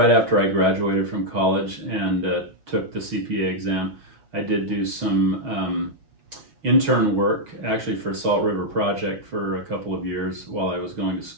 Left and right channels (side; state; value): left; late; 6.3 ms